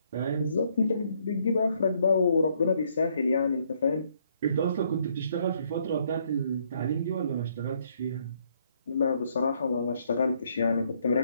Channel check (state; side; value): inverted; both; correlation -0.69